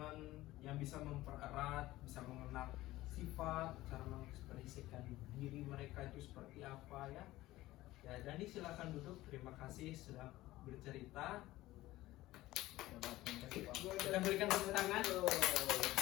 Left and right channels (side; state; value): right; quieter; 17.0 dB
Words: yang bisa mempererat, bisa mengenal sifat, cara mengekspresikan diri mereka itu seperti apa ya. Ya, Dandi silakan duduk. Terima kasih sudah bercerita. Kita berikan tepuk tangan.